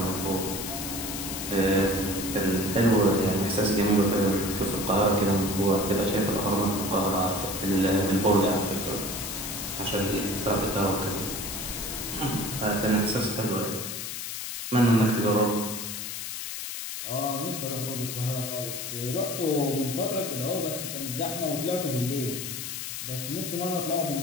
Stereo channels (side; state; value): left; noise; hiss, 6 dB below the sound